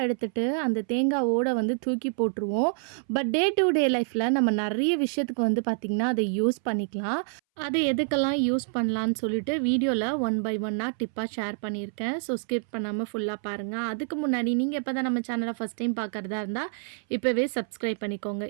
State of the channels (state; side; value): silent; left; 60 dB below the other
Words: எடுத்துகிட்டு அந்த தேங்காய் ஓடை தூக்கி போட்டுருவோம். பட் டே டு டே லைஃப்பில் நம்ம நிறைய விஷயத்துக்கு பார்த்திங்கன்னா அதை யூஸ் பண்ணிக்கலாம். அதை எதுக்கெல்லாம் யூஸ் பண்ணலான்னு சொல்லிட்டு வீடியோவில் ஒன் பை ஒன்னாக டிப்பாக ஷேர் பண்ணியிருக்கேன். ஸோ ஸ்கிப் பண்ணாமல் ஃபுல்லாக பாருங்கள். அதுக்கு முன்னாடி நீங்கள் எப்போ தான் நம்ம சேனலை ஃபஸ்ட் டைம் பார்க்குறதா இருந்தால் இப்போவே சப்ஸ்கிரைப் பண்ணிக்கோங்க.